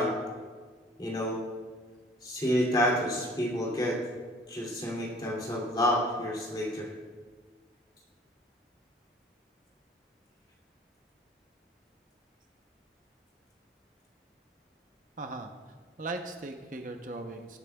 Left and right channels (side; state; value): both; normal; correlation 0.51